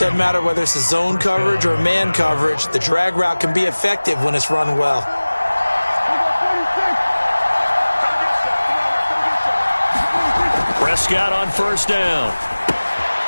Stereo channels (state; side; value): inverted; both; correlation -1.00